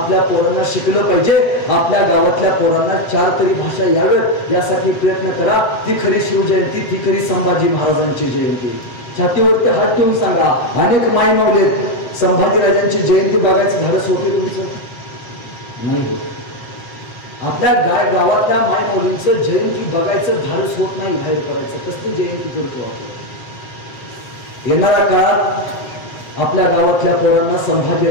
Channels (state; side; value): late; right; 7.8 ms